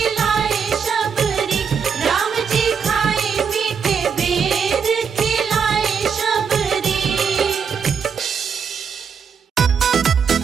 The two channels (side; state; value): left; quieter; 6.5 dB